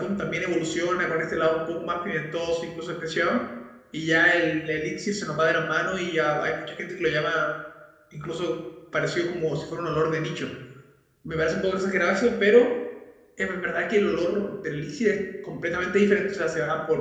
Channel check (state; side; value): identical; both; correlation 1.00